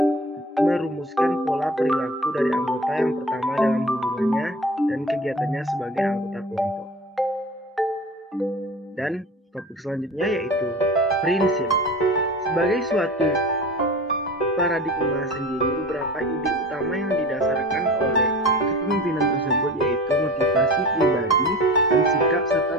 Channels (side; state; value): both; normal; correlation 0.37